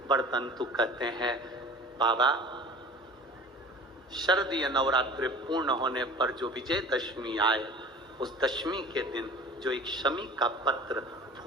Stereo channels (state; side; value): normal; both; correlation 0.41